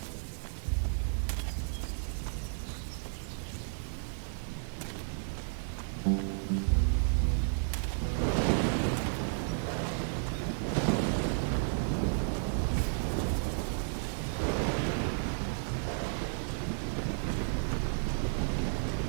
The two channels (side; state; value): left; silent; digital silence